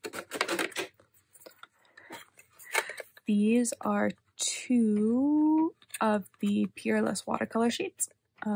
These are 2 of the Peerless watercolor sheets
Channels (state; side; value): identical; both; correlation 1.00